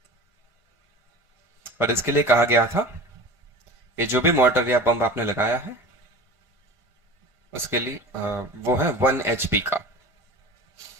और इसके लिए कहा गया था कि जो भी मोटर या पंप आपने लगाया है उसके लिए वो है 1 HP का।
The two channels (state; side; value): late; left; 1.5 ms